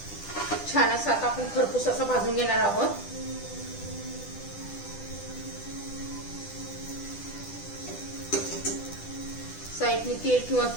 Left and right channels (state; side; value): late; right; 10 ms